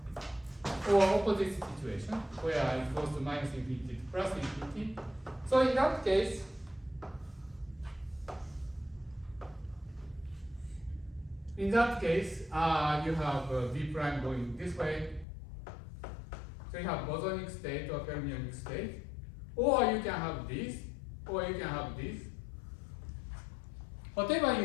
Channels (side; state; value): right; drops out; at 15.2 s